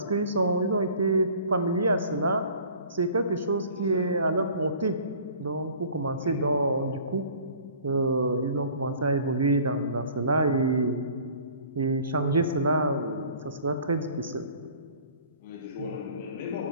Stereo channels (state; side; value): inverted; both; correlation -0.49